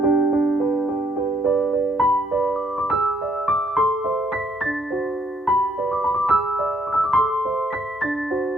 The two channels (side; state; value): both; normal; correlation 0.69